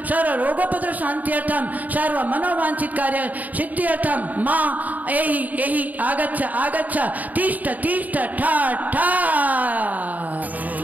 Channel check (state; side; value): late; left; 0.078 ms